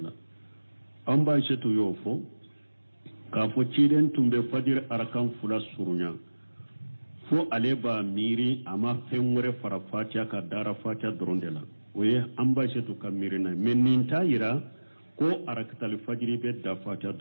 amba cetu yofo ka fo ciden tumbe fajir arakan fula surunya fo ale ba miri ama fenwore fara fatiha ka dara fatiha doronde la oye amba cetu ka miri na meninta yira ko arakatul fajri be da fatiha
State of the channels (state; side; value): inverted; both; correlation -1.00